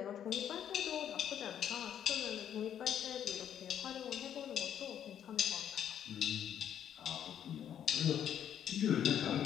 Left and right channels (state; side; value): quieter; right; 9.6 dB